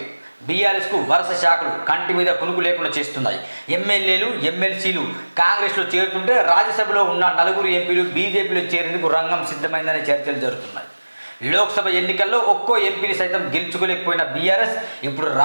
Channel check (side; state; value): both; inverted; correlation -1.00